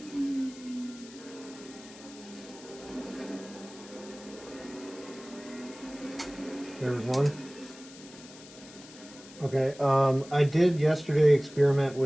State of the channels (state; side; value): noise; left; hiss, 19 dB below the sound